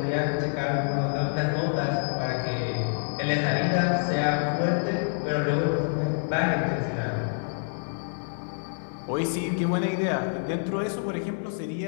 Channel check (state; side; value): silent; right; digital silence